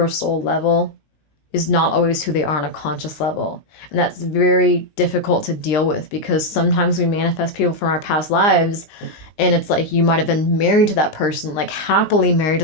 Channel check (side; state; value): right; late; 20 ms